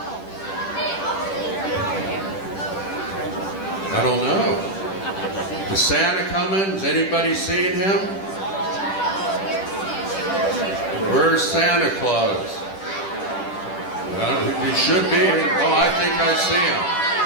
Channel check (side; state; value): right; late; 10 ms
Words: I don't know. Is Santa coming? Has anybody seen him? Where's Santa Claus? Well, he should be. Oh, I think I see him.